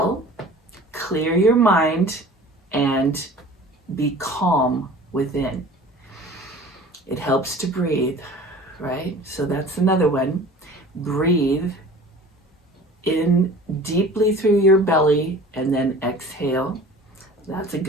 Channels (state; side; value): normal; both; correlation 0.43